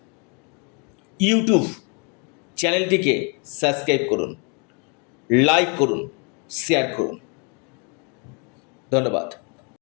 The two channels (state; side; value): quieter; right; 35.1 dB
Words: ইউটিউব চ্যানেলটিকে সাবস্ক্রাইব করুন, লাইক করুন, শেয়ার করুন। ধন্যবাদ।